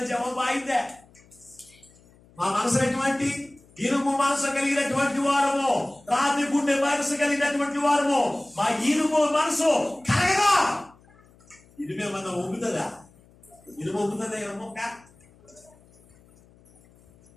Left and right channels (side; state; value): left; noise; hum, 28 dB below the sound